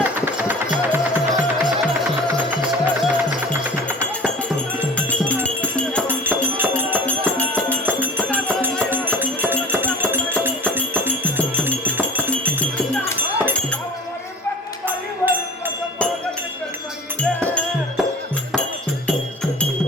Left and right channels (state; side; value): normal; both; correlation 0.41